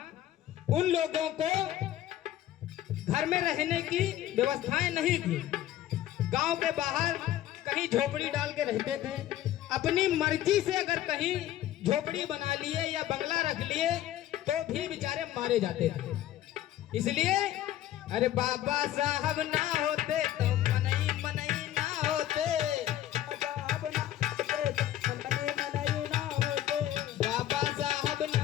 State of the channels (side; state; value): right; quieter; 12.9 dB